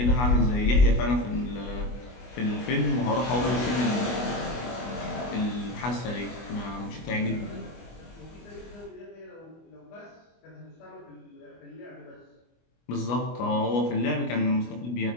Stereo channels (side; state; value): right; late; 24 ms